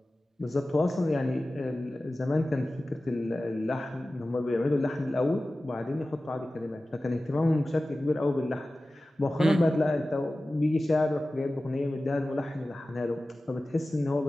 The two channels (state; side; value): normal; both; correlation 0.96